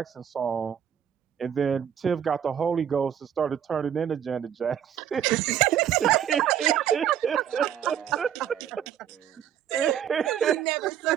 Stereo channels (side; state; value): left; quieter; 9.6 dB